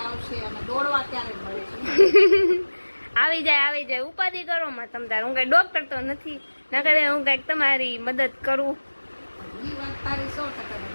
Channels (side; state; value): both; inverted; correlation -1.00